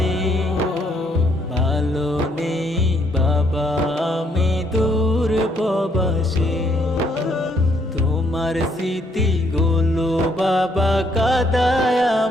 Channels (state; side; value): normal; both; correlation 0.70